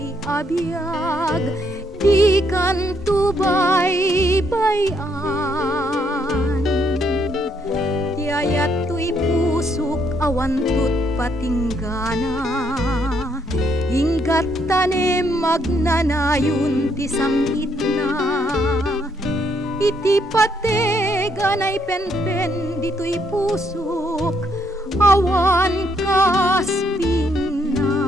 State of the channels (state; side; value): normal; both; correlation 0.72